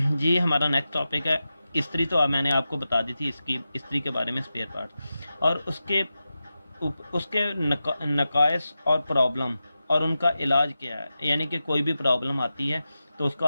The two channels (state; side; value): inverted; both; correlation -0.92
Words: जी। हमारा नेक्स्ट टॉपिक है इस्त्री। तो मैंने आपको बता दी थी इसकी इस्त्री के बारे में, स्पेयर पार्ट और उसके नकाइस और प्रॉब्लम और उनका इलाज क्या है। यानी कि कोई भी प्रॉब्लम आती है तो उसको